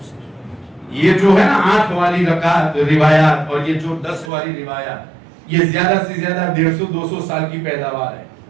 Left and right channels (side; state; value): left; drops out; at 4.3 s